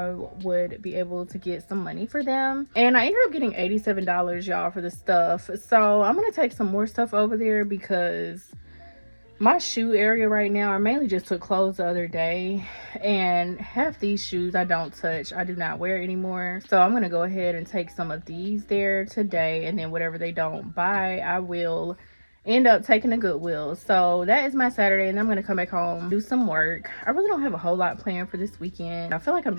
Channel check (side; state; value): both; inverted; correlation -1.00